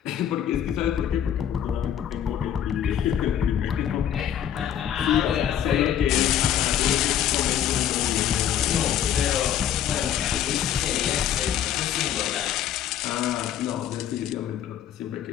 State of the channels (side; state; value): right; quieter; 10.1 dB